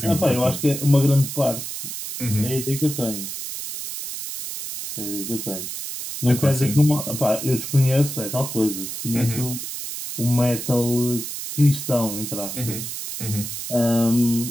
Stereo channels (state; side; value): noise; right; hiss, 7 dB below the sound